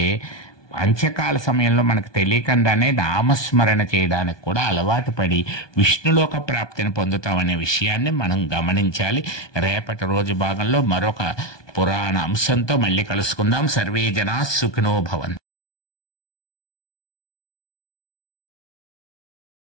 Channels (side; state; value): right; late; 1.2 ms